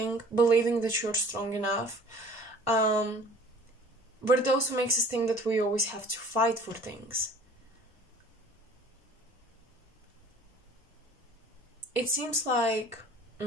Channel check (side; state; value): both; normal; correlation 0.49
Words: believing that you're strong enough. But it also makes us think that we always have to fight for things. It seems like